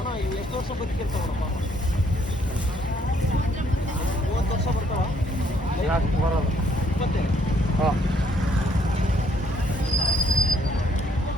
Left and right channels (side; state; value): both; normal; correlation 0.67